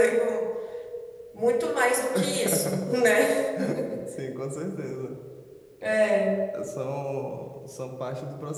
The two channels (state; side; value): identical; both; correlation 1.00